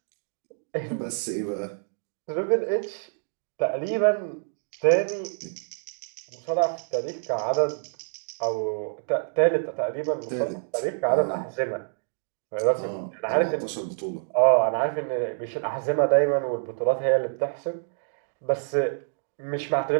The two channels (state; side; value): silent; left; digital silence